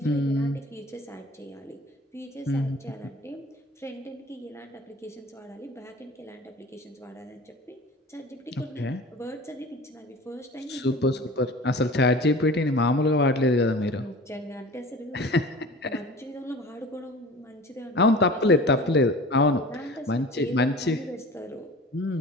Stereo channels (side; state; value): both; normal; correlation 0.40